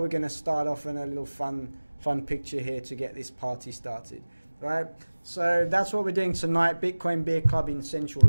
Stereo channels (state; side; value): inverted; both; correlation -1.00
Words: we're going to start off in a little fun picture here to get this party started, right? So that's what we're doing tonight, Bitcoin Beer Club in central